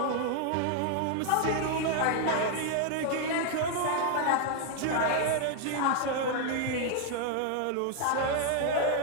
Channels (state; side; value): different; both; correlation 0.00